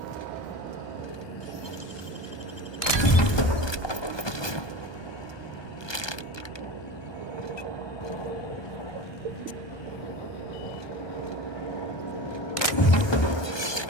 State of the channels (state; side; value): late; right; 1.2 ms